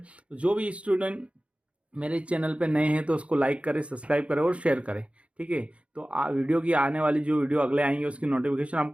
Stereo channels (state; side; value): late; left; 0.062 ms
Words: तो जो भी स्टूडेंट मेरे चैनल पे नए हैं तो उसको लाइक करें, सब्सक्राइब करें और शेयर करें। ठीक है। तो वीडियो की आने वाली जो वीडियो अगले आएंगे उसकी नोटिफिकेशन